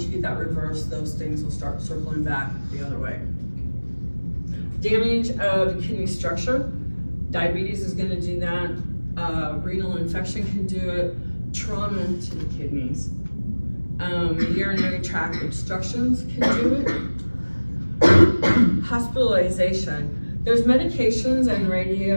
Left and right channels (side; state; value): both; inverted; correlation -1.00